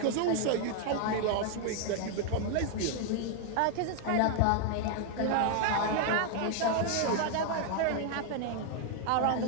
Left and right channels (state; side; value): different; both; correlation 0.00